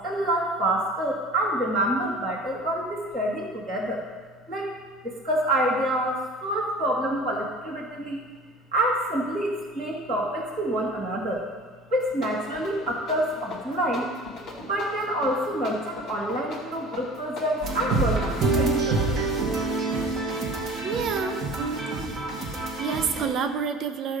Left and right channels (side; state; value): both; normal; correlation 0.43